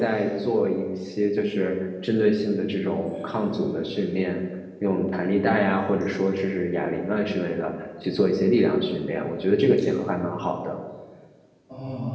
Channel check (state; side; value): identical; both; correlation 1.00